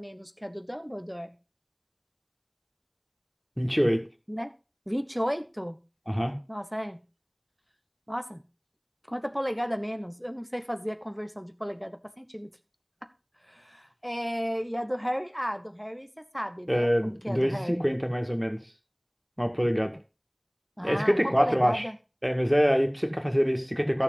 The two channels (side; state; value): both; identical; correlation 1.00